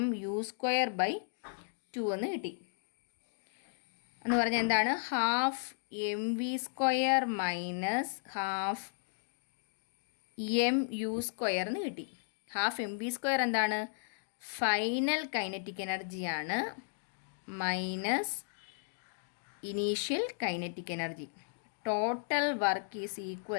mu²/2 എന്ന് കിട്ടി. എന്ന് പറഞ്ഞാൽ എന്താണ്? Half mv² minus half mu² എന്ന് കിട്ടി. ഹാഫ് mv² എന്താണ്? ഫൈനൽ കൈനറ്റിക് എനർജിയാണ് minus initial kinetic energy. Total work is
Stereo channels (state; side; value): silent; right; digital silence